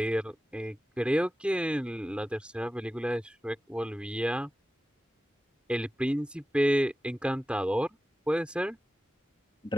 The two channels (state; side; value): normal; both; correlation 0.95